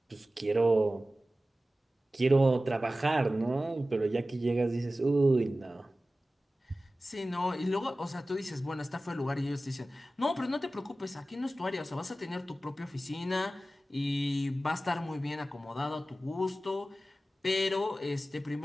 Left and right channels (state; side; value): normal; both; correlation 0.95